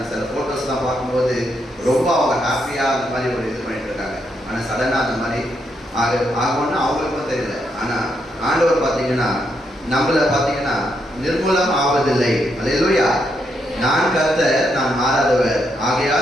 சில ஃபோட்டோஸ்லாம் பார்க்கும்போது ரொம்ப அவங்க ஹாப்பியாக அந்த மாதிரி ஒரு இது பண்ணிட்டு இருக்காங்க. ஆனால் சடனாக அந்த மாதிரி ஆகும்னா அவங்களுக்கும் தெரியல. ஆனால் ஆண்டவர் பார்த்தீங்கன்னா நம்மளை பார்த்தீங்கன்னா நிர்மூலம் ஆவதில்லை. அல்லேலூயா. நான் கர்த்தர், நான் மாறாதவர்,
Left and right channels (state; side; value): normal; both; correlation 0.79